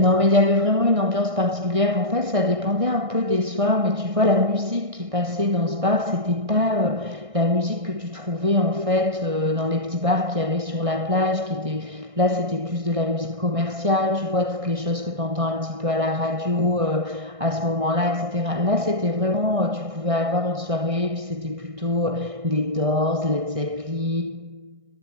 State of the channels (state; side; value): late; left; 1.6 ms